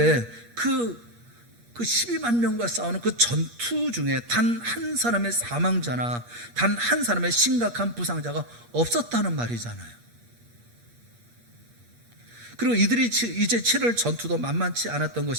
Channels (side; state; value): left; late; 8.5 ms